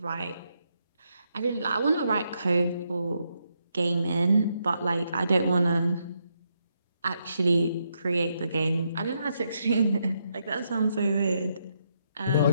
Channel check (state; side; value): inverted; both; correlation -0.79